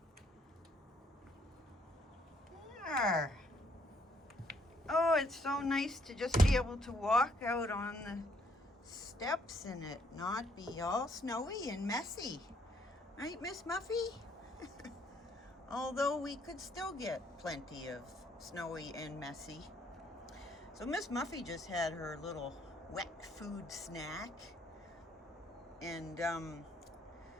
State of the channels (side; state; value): both; normal; correlation 0.68